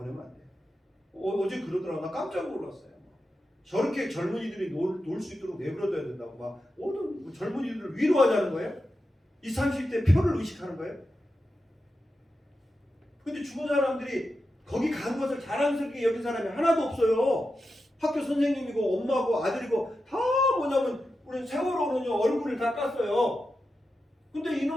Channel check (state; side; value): normal; both; correlation 0.90